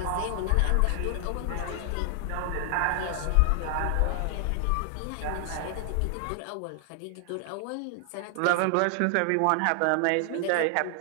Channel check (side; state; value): both; different; correlation 0.00